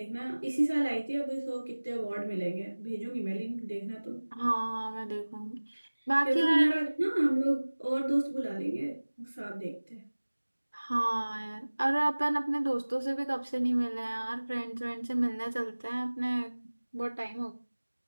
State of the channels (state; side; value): inverted; both; correlation -1.00